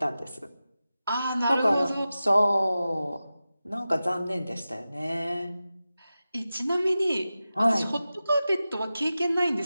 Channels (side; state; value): both; inverted; correlation -0.94